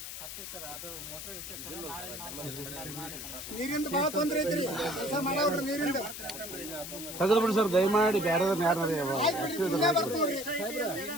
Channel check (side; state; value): left; noise; hiss, 9 dB below the sound